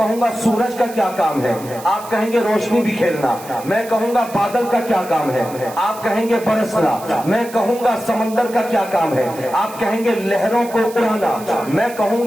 گا سورج کا کیا کام ہے؟ آپ کہیں گے روشنی بکھیرنا۔ میں کہوں گا بادل کا کیا کام ہے؟ آپ کہیں گے برسنا۔ میں کہوں گا سمندر کا کیا کام ہے؟ آپ کہیں گے لہروں کو اڑانا۔ میں کہوں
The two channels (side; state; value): right; noise; hiss, 17 dB below the sound